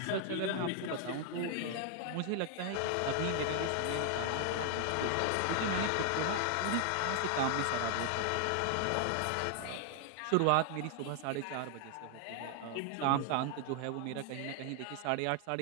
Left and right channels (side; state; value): both; different; correlation 0.00